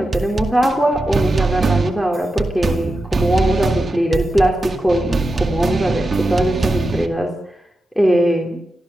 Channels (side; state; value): both; normal; correlation 0.90